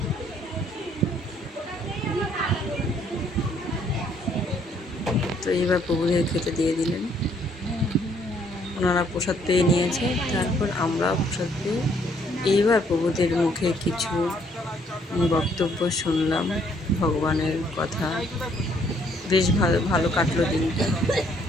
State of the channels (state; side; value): normal; both; correlation 0.66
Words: তো এইবার প্রভুদের খেতে দিয়ে দিলেন। ওনারা প্রসাদ পেয়ে নিয়েছে, তারপর আমরা প্রসাদ পেয়ে এইবার প্রভুদের মুখে কিছু বক্তব্য শুনলাম, ভগবানের কথা। বেশ ভালো ভালো কাটলো দিনটা।